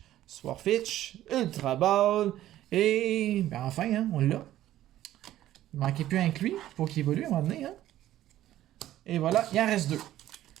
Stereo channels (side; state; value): left; quieter; 13.5 dB